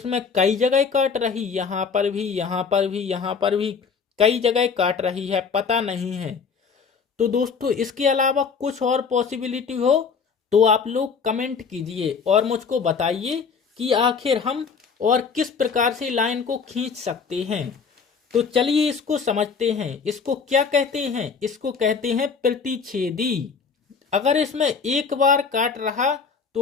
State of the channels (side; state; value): right; quieter; 5.7 dB